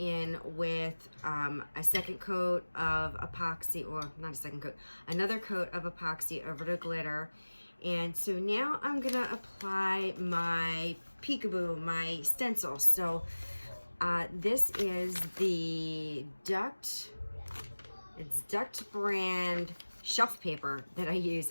with a second coat of epoxy, or not a second coat, another coat of epoxy over the glitter. And so now I'm gonna apply my peekaboo, my stencil. So this is the Duct, it's Duct brand shelf paper that I use.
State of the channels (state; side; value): inverted; both; correlation -1.00